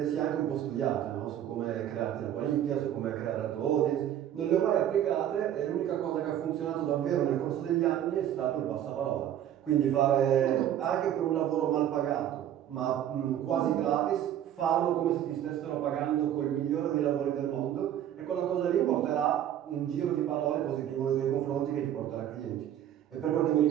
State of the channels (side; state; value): left; quieter; 11.0 dB